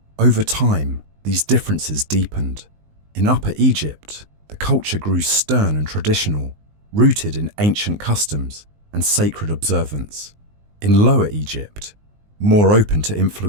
Over time, these differences deepened. In Upper Egypt, the culture grew stern and traditional, rooted in ancient customs and sacred observance. In Lower Egypt, more open to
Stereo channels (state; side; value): late; left; 19 ms